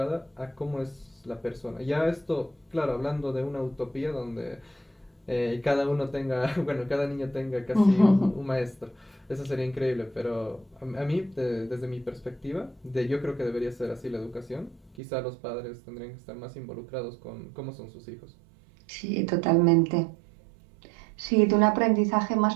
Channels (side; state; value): left; drops out; at 15.0 s